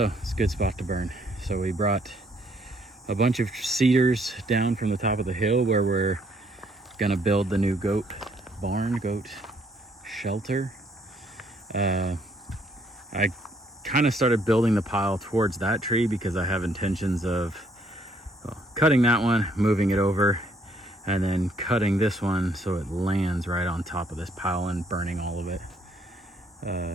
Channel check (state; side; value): normal; both; correlation 0.67